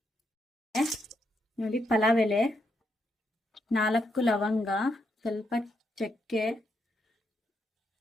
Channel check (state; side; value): normal; both; correlation 0.80